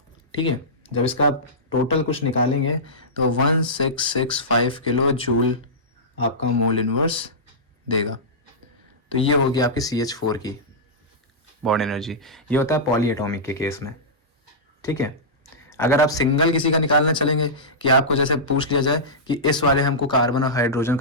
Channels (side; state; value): both; normal; correlation -0.14